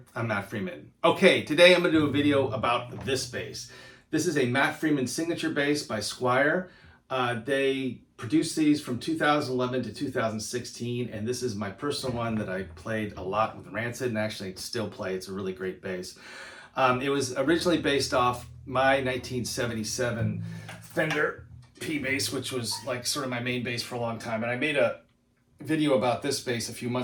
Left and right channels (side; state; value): both; identical; correlation 1.00